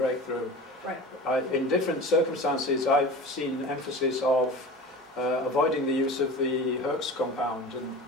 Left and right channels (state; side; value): normal; both; correlation 0.35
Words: Right. In different circumstances, I've seen emphasis of avoiding the use of the Herx compound and